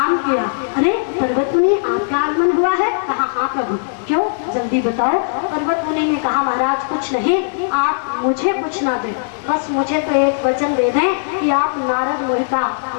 किया। अरे पर्वत मुनि आपका आगमन हुआ है? कहा हाँ प्रभु। क्यों? जल्दी बताओ। पर्वत मुनि ने कहा महाराज कुछ नहीं, आप मुझे कुछ ना दें, बस मुझे तो एक वचन दे दें कि आप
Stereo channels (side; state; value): right; silent; digital silence